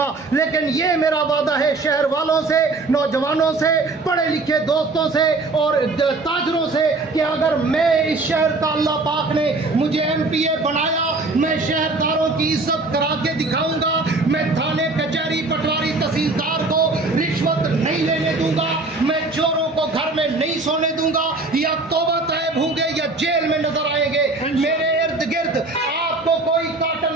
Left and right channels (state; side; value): quieter; left; 3.4 dB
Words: लेकिन ये मेरा वादा है शहर वालों से, नौजवानों से, पढ़े लिखे दोस्तों से और ताजरों से कि अगर मैं इस शहर का अल्लाह पाक ने मुझे MPA बनाया, मैं शहरदारों की इज्जत करा के दिखाऊंगा। मैं थाने, कचहरी, पटवारी, तहसीलदार को रिश्वत नहीं लेने दूंगा, मैं चोरों को घर में नहीं सोने दूंगा, या तौबा तैब होंगे या जेल में नजर आएंगे। मेरे इर्द गिर्द आपको कोई